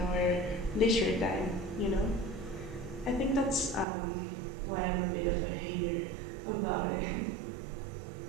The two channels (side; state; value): left; drops out; at 3.9 s